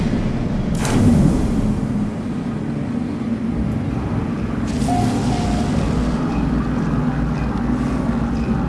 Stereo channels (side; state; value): both; identical; correlation 1.00